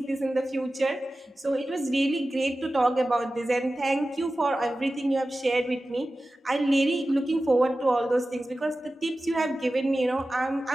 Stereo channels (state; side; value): normal; both; correlation 0.95